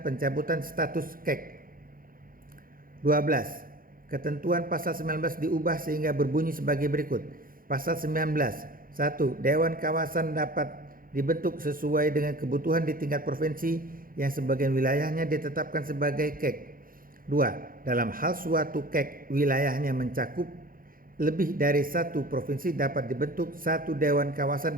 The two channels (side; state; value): left; late; 0.41 ms